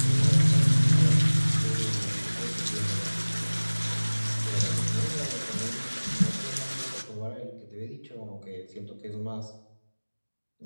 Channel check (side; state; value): both; inverted; correlation -1.00